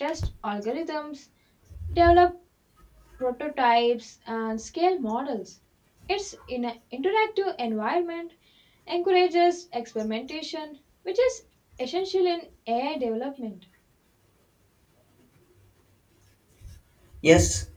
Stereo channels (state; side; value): identical; both; correlation 1.00